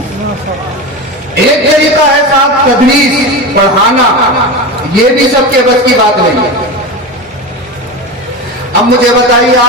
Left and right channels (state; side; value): normal; both; correlation 0.23